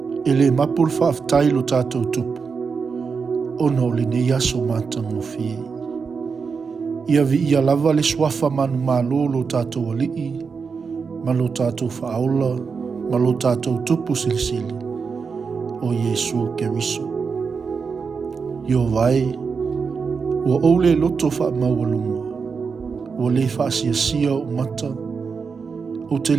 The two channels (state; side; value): quieter; left; 5.4 dB